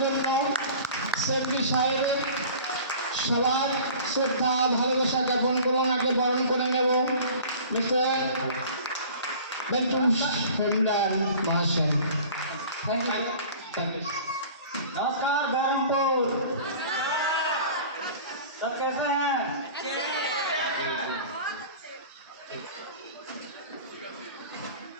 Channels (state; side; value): inverted; both; correlation -0.43